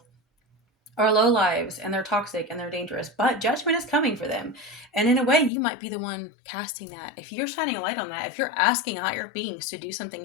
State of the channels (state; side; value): drops out; right; at 5.5 s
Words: are low lives and they're toxic and they're dangerous, but judgment is coming for them. And in a way, you might be the one casting that. If you're shining a light on that, if you're asking higher beings to do